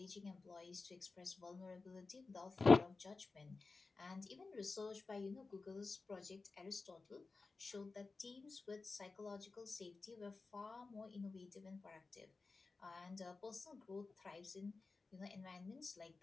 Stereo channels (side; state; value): right; quieter; 3.9 dB